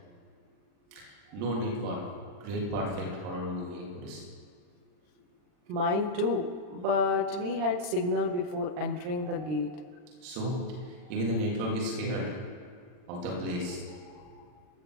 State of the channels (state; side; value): late; left; 39 ms